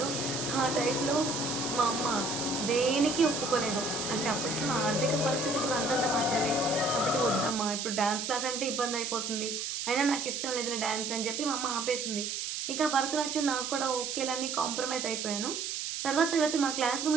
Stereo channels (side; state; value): right; noise; hiss, 3 dB below the sound